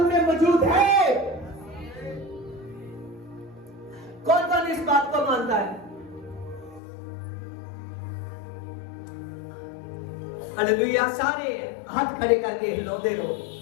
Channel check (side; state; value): right; drops out; at 6.8 s